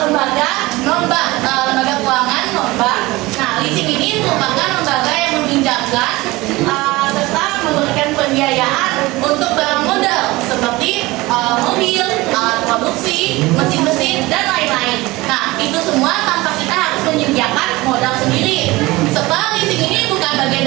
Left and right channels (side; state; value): left; quieter; 20.6 dB